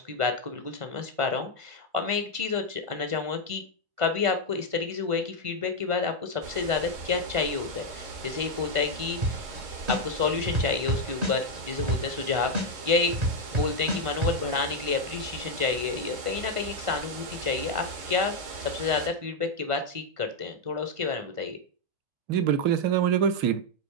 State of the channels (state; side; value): late; left; 1.5 ms